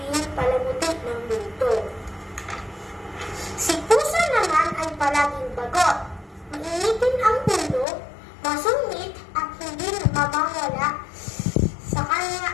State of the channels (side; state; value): right; drops out; at 7.9 s